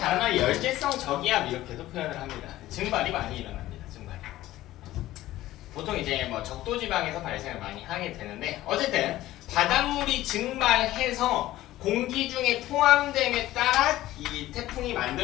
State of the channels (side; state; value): right; quieter; 15.4 dB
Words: 말 열대성 저기압 이렇게도 표현을 합니다. 증발이 많이 일어납니다. 증발이. 보통 이제 뭐 적도 지방에서 발생을 많이 하게 되는데 어쨌든 바닷물이 증발해서 공기 중에 포함됨에 따라 이 태풍이